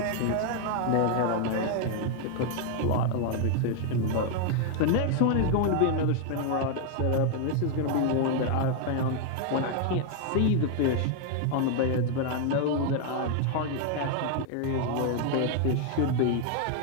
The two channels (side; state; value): both; different; correlation 0.00